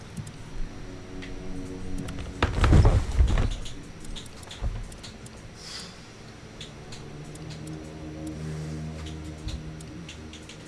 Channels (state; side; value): identical; both; correlation 1.00